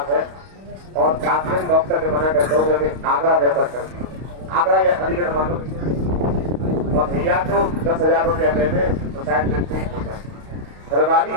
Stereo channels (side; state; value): left; late; 32 ms